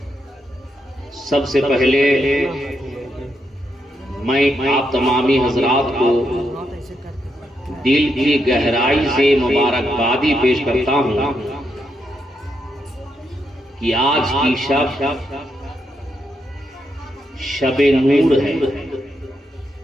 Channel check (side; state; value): both; normal; correlation 0.81